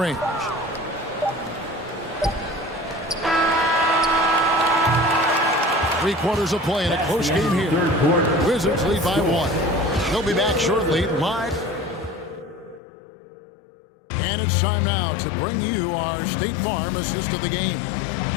3 quarters of play in a close game here. Wizards lead by 1. They'll be back shortly live. And it's time now to bring you our State Farm assist of the game.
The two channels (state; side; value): drops out; right; at 12.8 s